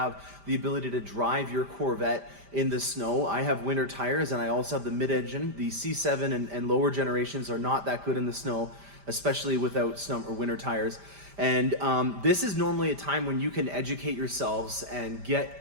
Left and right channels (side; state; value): left; late; 5.0 ms